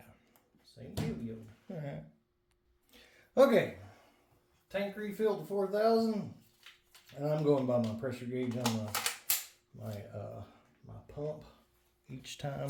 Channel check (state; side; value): identical; both; correlation 1.00